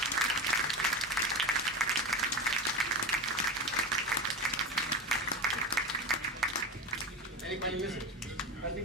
Anybody miss it? I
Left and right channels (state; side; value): normal; both; correlation 0.23